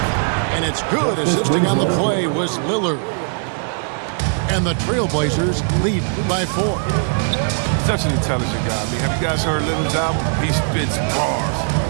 And it's good. Assisting on the play was Lillard. And the Trailblazers lead by 4. Such an intelligent guy. I mean, have you guys heard Lillard's album? He spits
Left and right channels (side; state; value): left; silent; 58 dB below the other